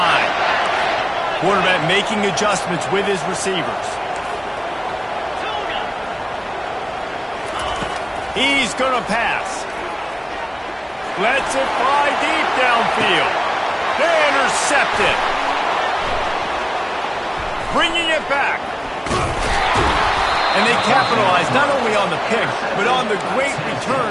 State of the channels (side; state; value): both; identical; correlation 1.00